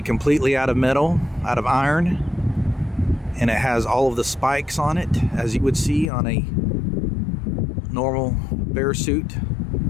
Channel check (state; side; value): drops out; right; at 6.1 s